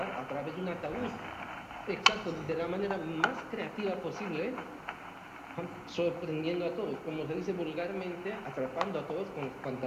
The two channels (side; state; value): both; identical; correlation 1.00